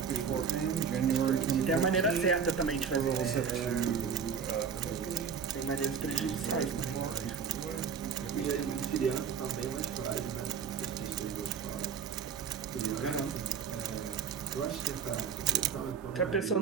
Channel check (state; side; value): quieter; left; 6.7 dB